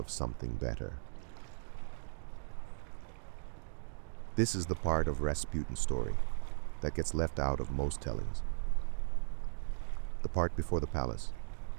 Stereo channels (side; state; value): left; silent; digital silence